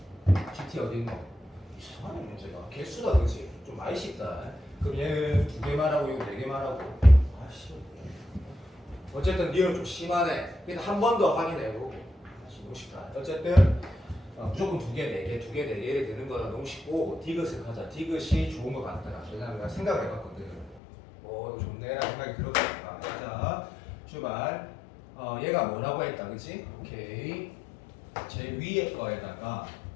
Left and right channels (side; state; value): right; drops out; at 20.8 s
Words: GT 어디 있노? 이상하네 문제가. 개수다 그렇지? 좀 많이 쉽다. 그럼 얘는 두 개 말하고 이거 네 개 말하고. 아씨. 어쨌든 니은 좀 심하네. 그냥 한 번 더 확인해보고. 너무 쉽다. 어쨌든 무조건 두 개, 네 개, 두 개, 네 개 되는 거는 너무 쉽고 디귿을 하자. 디귿이 좋은 것 같더라. 왜냐면 내가 생각을 해봤거든. 이거 좋네라는 생각이 들었으니까. 자, 출발. 얘가 뭐라고 했다, 그치? 오케이. 제일 위에 거에다가